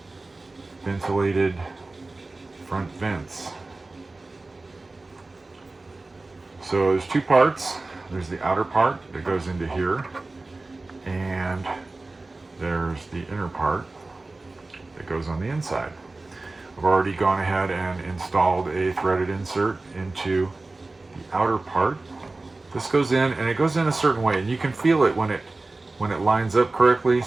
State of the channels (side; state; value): left; quieter; 3.2 dB